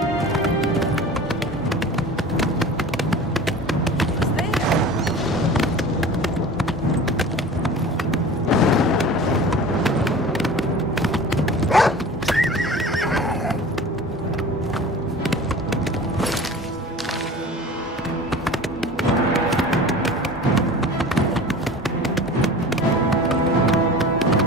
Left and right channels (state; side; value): normal; both; correlation 0.38